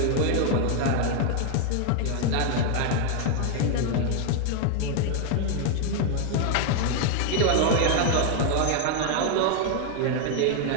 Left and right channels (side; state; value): both; different; correlation 0.00